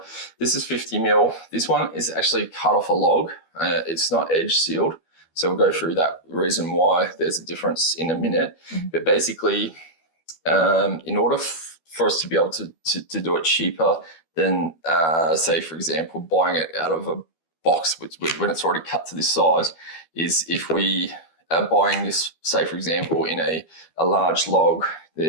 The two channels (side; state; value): right; late; 12 ms